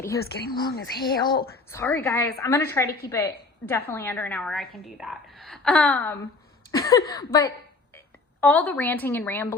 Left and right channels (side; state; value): right; quieter; 3.7 dB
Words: is getting long as hell. Sorry guys. I'm going to try to keep it definitely under an hour. I can do that. But all the ranting and